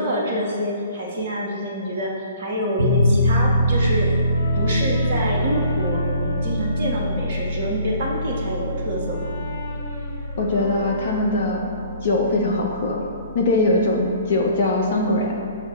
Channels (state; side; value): inverted; both; correlation -0.54